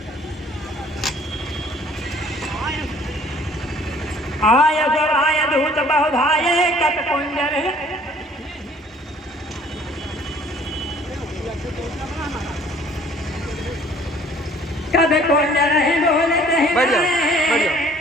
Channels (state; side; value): normal; both; correlation 0.55